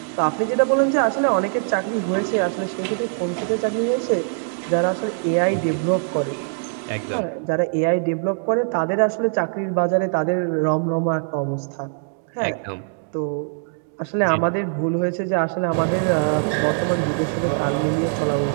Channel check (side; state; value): left; silent; 64 dB below the other